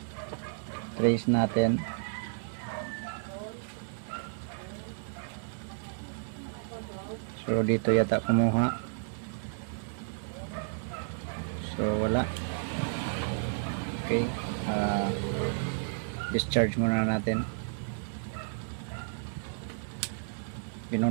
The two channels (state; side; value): silent; left; digital silence